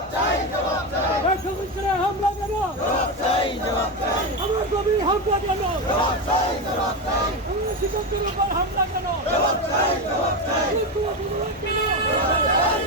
হামলা কেন? আমার গভীর হামলা কেন? শিক্ষকদের উপর হামলা কেন?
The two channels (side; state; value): both; normal; correlation 0.14